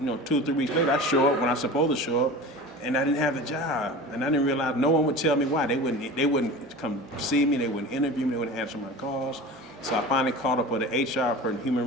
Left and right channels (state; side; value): normal; both; correlation 0.34